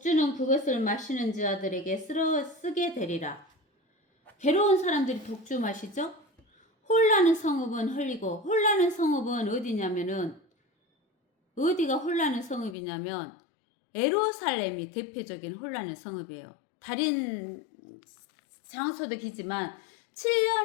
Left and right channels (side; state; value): right; drops out; at 12.8 s